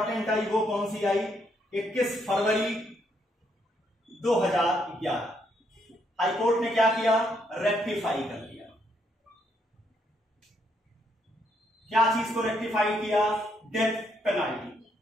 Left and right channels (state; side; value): normal; both; correlation 0.74